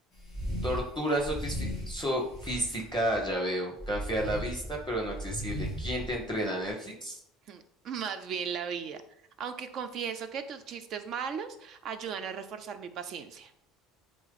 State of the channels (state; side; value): normal; both; correlation 0.53